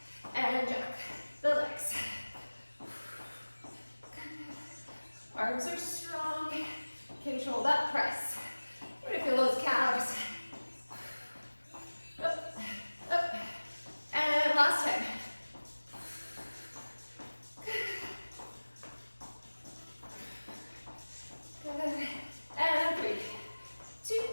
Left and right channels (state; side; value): inverted; both; correlation -1.00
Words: And jack the legs. Arms are strong. Control that press. We're gonna feel those calves. Up, up. And last time. Good. And 3, 2,